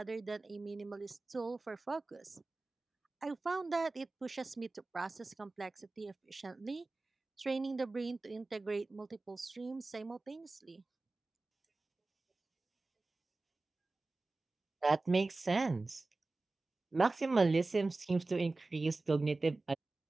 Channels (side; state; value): left; quieter; 3.3 dB